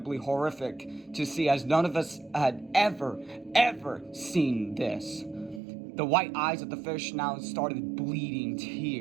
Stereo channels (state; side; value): drops out; left; at 5.6 s